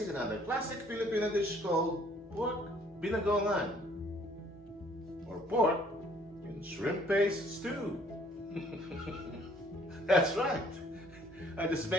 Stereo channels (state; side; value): normal; both; correlation 0.60